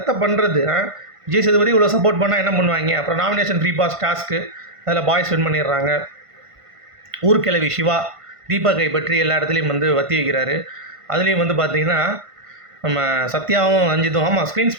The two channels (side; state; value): left; late; 1.5 ms